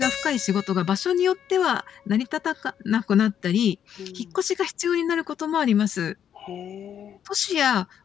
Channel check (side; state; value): right; quieter; 9.1 dB